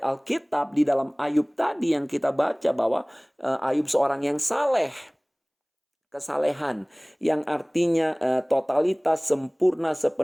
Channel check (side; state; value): both; identical; correlation 1.00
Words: di dalam Ayub tadi yang kita baca bahwa Ayub seorang yang saleh. Kesalehan yang artinya totalitas, sempurna,